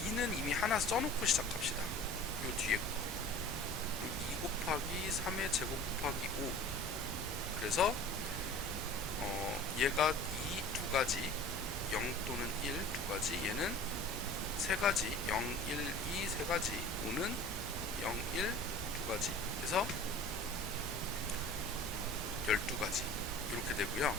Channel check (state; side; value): normal; both; correlation 0.42